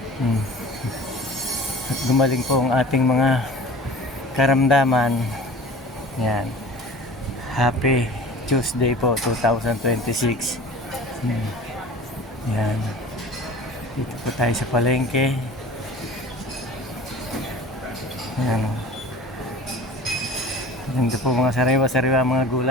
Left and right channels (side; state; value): both; normal; correlation 0.42